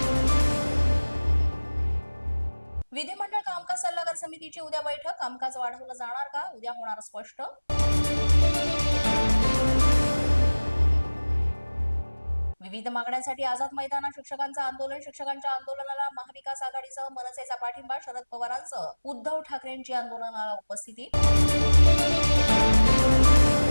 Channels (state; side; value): inverted; both; correlation -1.00